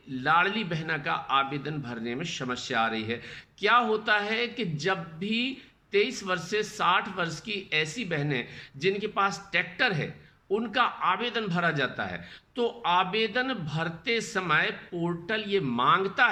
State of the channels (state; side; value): identical; both; correlation 1.00